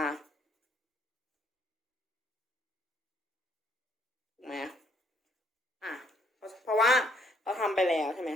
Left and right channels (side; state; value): both; normal; correlation 0.67